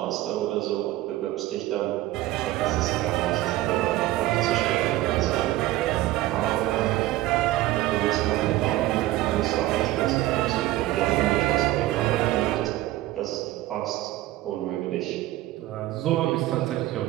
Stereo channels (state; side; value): quieter; left; 16.2 dB